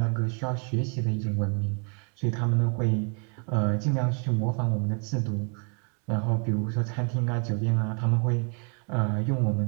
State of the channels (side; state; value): left; quieter; 38.4 dB